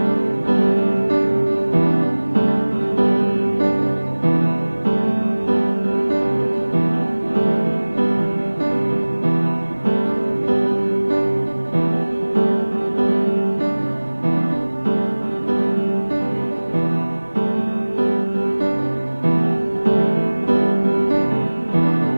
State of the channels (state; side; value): inverted; both; correlation -1.00